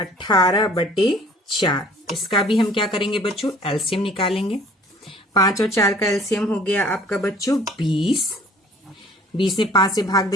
इसका भी हम क्या करेंगे बच्चों, एलसीएम निकालेंगे। 5 और 4 का एलसीएम हो गया आपका बच्चों 20। 20 में 5 से भाग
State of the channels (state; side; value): normal; both; correlation 0.52